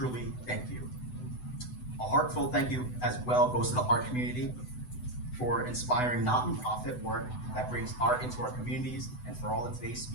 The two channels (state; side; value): late; right; 8.0 ms